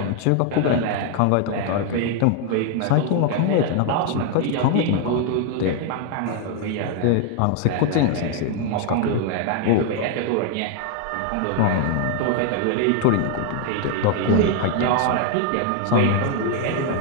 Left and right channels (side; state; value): both; different; correlation 0.00